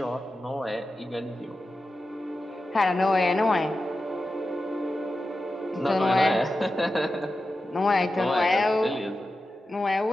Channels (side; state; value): both; normal; correlation 0.92